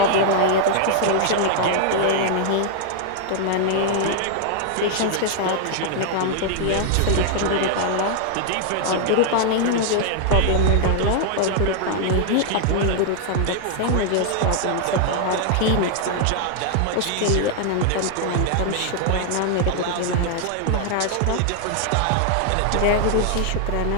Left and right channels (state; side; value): different; both; correlation 0.00